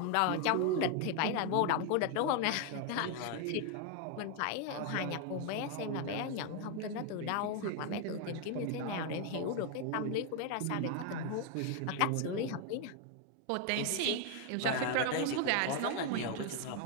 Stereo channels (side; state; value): both; different; correlation 0.01